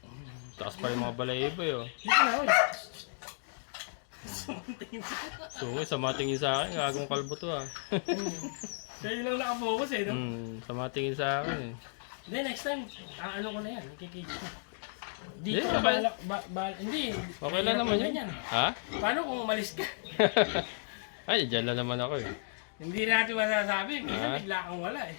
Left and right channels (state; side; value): silent; right; digital silence